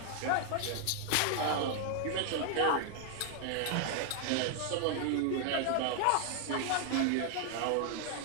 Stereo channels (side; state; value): both; different; correlation 0.00